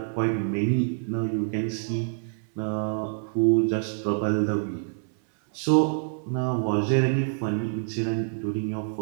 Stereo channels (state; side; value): silent; left; 61 dB below the other